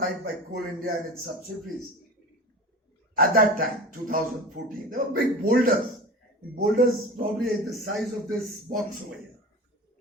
by Coal India and its subsidiaries. At that time, 2014, there were big boulders. Boulders probably the size of this box over here,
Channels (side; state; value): both; normal; correlation 0.34